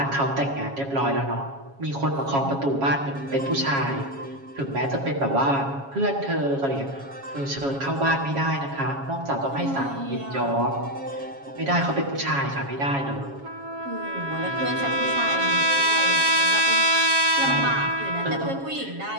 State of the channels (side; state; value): left; late; 7.3 ms